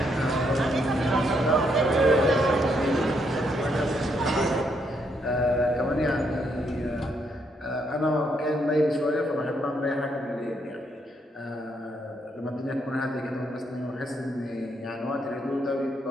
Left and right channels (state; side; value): normal; both; correlation 0.75